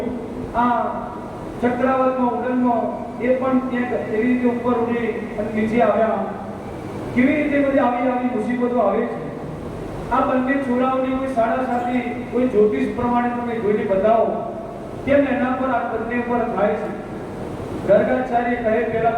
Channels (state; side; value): identical; both; correlation 1.00